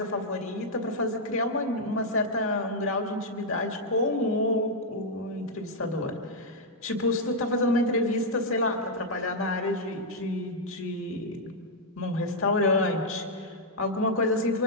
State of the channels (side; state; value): both; normal; correlation -0.04